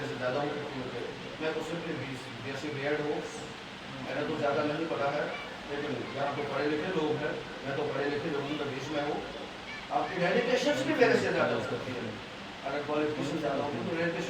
سے زیادہ ہوں, کیونکہ میں تو صرف بیسی بیڈ ہوں, میں نے تو زیادہ نہیں پڑھا ہے, لیکن یہاں تو پڑھے لکھے لوگ ہیں, میں تو پڑھے لکھے لوگوں کے بیچ میں ہوں. آپ کی ڈیڈیکیشنس بھی میرے سے زیادہ ہوتی ہیں, اگر کوالیفکیشن زیادہ ہوتی تو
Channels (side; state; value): both; identical; correlation 1.00